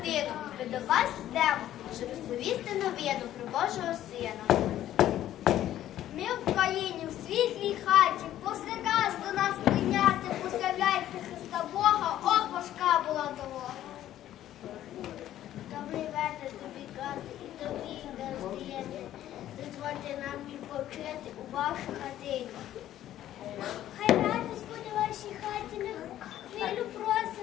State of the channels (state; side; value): quieter; right; 12.6 dB